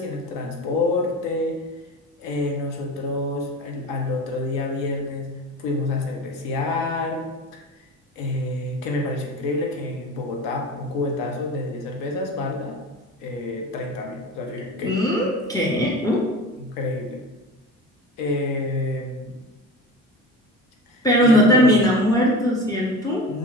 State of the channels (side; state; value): both; normal; correlation 0.32